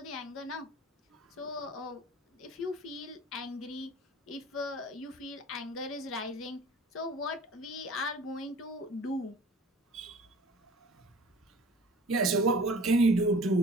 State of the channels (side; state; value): both; normal; correlation 0.45